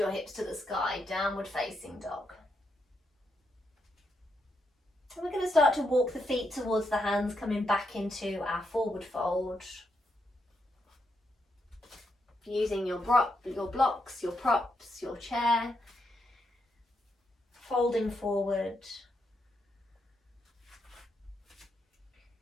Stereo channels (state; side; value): normal; both; correlation 0.81